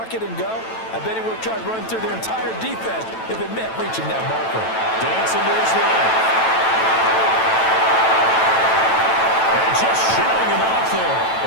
it and go, I bet he would have tried running through their entire defense if it meant reaching that marker. Dancing to his right. And just shutting him off there.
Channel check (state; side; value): late; right; 9.0 ms